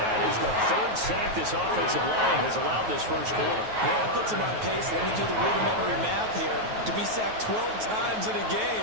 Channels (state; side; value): late; left; 9.3 ms